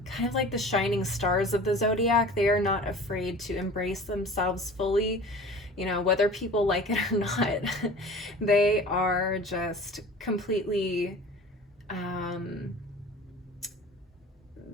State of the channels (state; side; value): normal; both; correlation 0.41